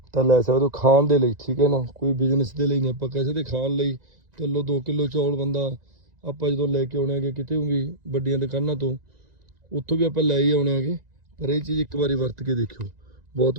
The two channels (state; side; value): late; left; 1.9 ms